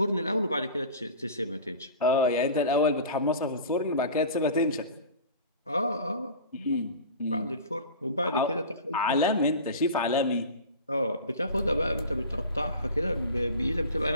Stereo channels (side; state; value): both; inverted; correlation -0.36